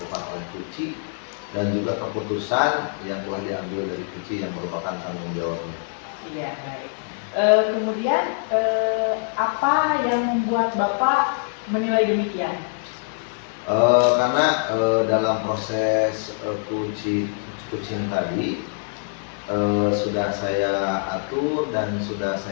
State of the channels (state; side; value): silent; right; 63 dB below the other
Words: oleh coaching dan juga keputusan yang telah diambil dari coaching yang merupakan tanggung jawabnya. Iya, baik. Kemudian apa yang membuat Bapak menilai demikian? Karena dalam proses coaching tadi sudah saya atur dan sudah